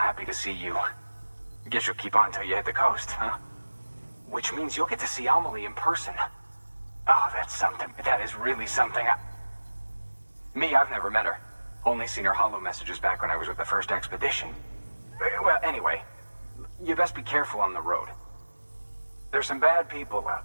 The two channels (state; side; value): inverted; both; correlation -1.00